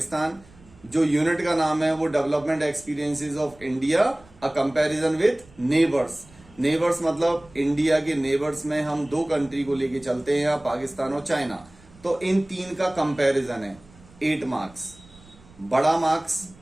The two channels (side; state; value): right; noise; rumble, 25 dB below the sound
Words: जो यूनिट का नाम है वो development experiences of India, a comparison with neighbours. Neighbours मतलब इंडिया के नेबर्स में हम 2 कंट्री को लेके चलते हैं, पाकिस्तान और चाइना। तो इन 3 का कंपैरिजन है, 8 मार्क्स। बड़ा मार्क्स